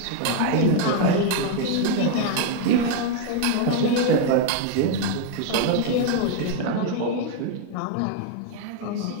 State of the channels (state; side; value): different; both; correlation 0.00